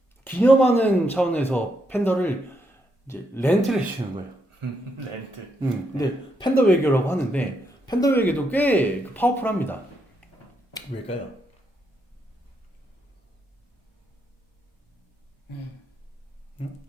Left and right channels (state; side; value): normal; both; correlation 0.79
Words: 기념하는 차원에서 팬더를 이제 렌트를 해주는 거예요. 렌트. 근데 팬더 외교라고 하는데 팬더 외교도 꽤 파워풀합니다. 왜일까요?